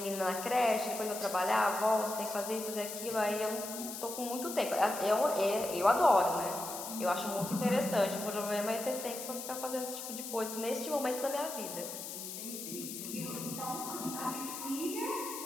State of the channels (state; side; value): noise; left; hiss, 8 dB below the sound